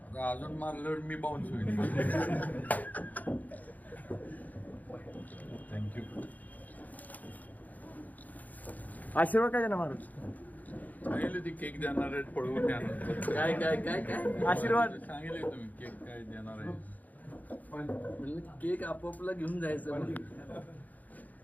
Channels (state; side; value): late; right; 0.080 ms